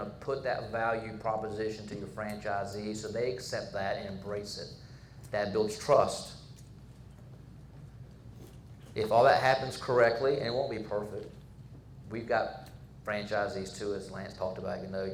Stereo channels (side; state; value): both; identical; correlation 1.00